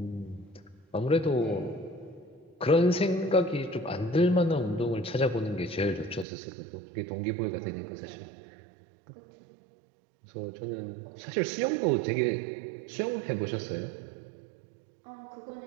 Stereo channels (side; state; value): left; drops out; at 6.2 s